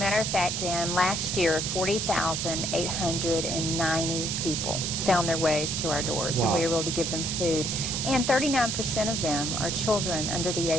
of fact, Dan, last year 40,890 people found their ways to our doors, and we were able to give them food. And 39% of them are children under the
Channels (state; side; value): noise; right; hiss, 1 dB below the sound